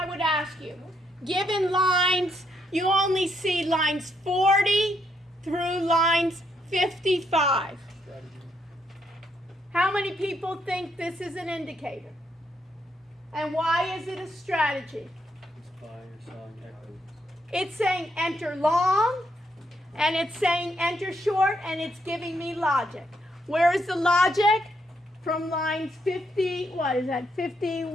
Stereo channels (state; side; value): normal; both; correlation 0.76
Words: would ask you? Given lines, you only see lines 40 through lines 55. How many people think this is an indicator? And why is it a strategy? it's by or selling equity. It's saying enter long, and it's saying enter short, and it's giving me logic. Where is the logic? From lines